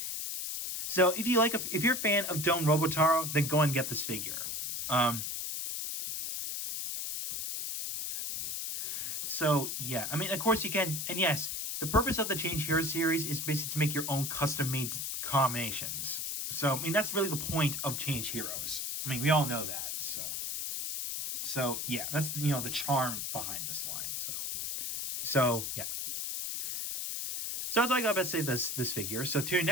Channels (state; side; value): noise; left; hiss, 3 dB below the sound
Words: if you're a fan of Juo Robotaro, then go and get this figure. So yeah, I mean, of course you can, and yes, the purpose of the Change Hero series is basically to make your own custom-made combinations. So I mean, that's really the point of Change Heroes. I mean, we all know that. So yeah, that's the charm behind this line. So yeah. So that's all I got to say this figure. So till